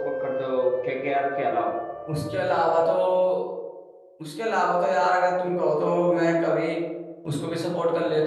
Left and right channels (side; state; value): both; identical; correlation 1.00